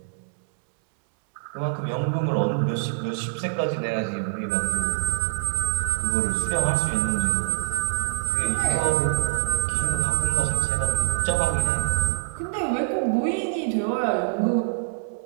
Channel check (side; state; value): left; silent; 62 dB below the other